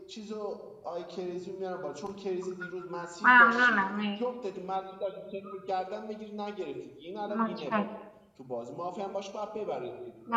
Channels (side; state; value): both; identical; correlation 1.00